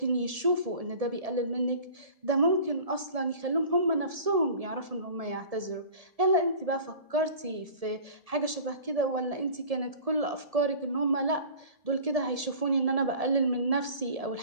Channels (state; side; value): late; left; 1.7 ms